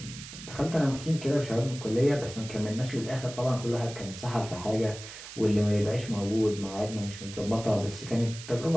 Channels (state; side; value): noise; right; hiss, 13 dB below the sound